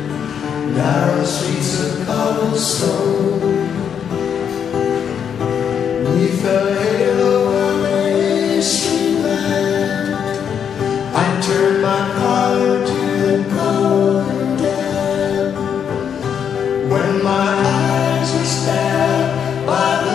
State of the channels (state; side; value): quieter; right; 7.9 dB